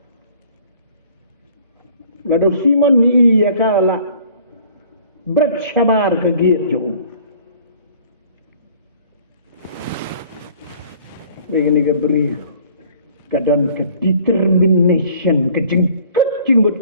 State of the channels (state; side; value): inverted; both; correlation -0.53